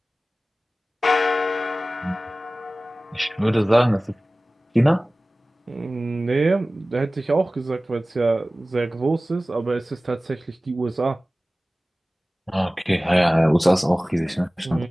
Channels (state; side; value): normal; both; correlation 0.97